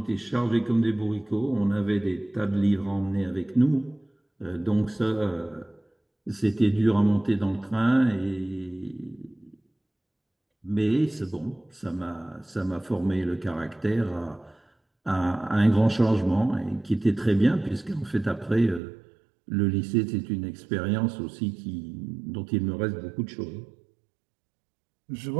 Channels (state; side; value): drops out; left; at 18.8 s